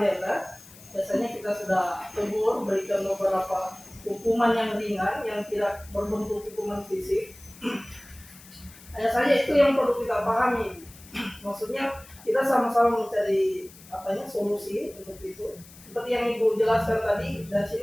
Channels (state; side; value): noise; left; hiss, 21 dB below the sound